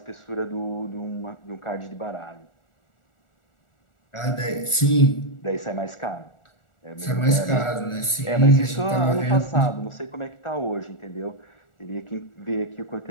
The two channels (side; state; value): right; late; 1.4 ms